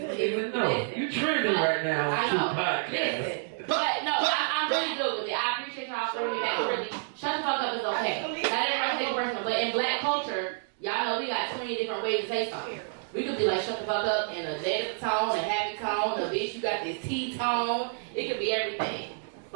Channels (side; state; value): left; silent; digital silence